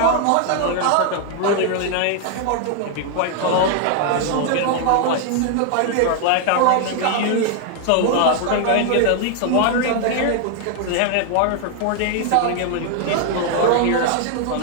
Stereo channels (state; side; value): different; both; correlation 0.00